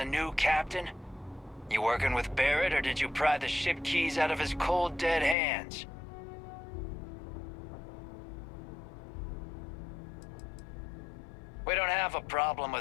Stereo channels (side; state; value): right; drops out; at 5.4 s